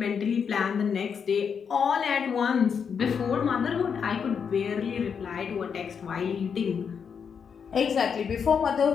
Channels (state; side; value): quieter; right; 6.7 dB